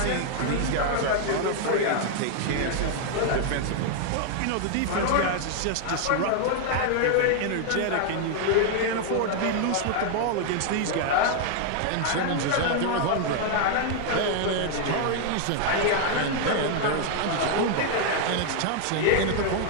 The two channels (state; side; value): different; both; correlation 0.00